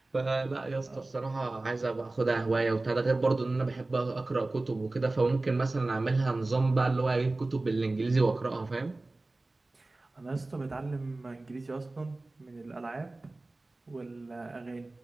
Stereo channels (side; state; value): left; quieter; 3.0 dB